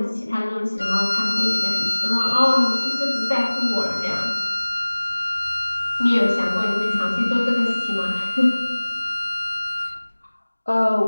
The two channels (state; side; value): inverted; both; correlation -1.00